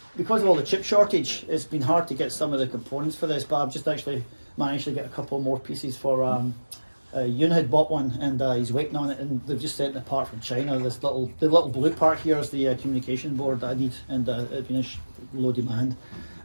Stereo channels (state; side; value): inverted; both; correlation -1.00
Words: because of all the chip shortage, it's been hard to get some of the components for this, but I've just actually managed to get a couple more pieces for. Yoon had bought one, and he's waiting on it, and they've just sent it apart from China. The little blue part here is the communication board that I need, and it's been low demand.